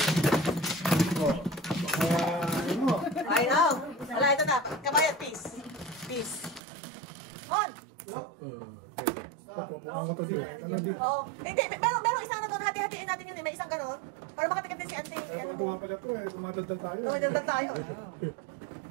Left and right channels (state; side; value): drops out; left; at 6.6 s